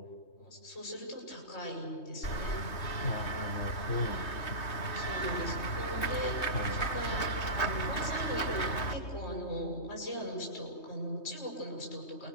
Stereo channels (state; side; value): late; right; 3.2 ms